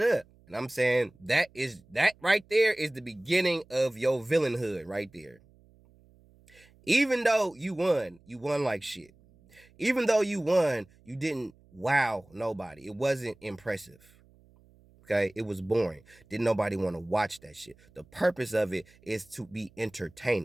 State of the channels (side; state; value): right; noise; hum, 29 dB below the sound